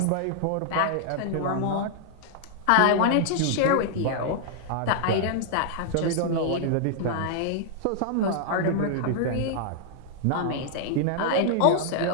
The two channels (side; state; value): both; different; correlation -0.01